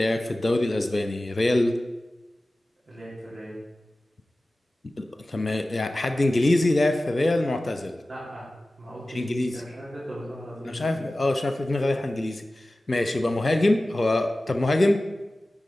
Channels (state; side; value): normal; both; correlation 0.96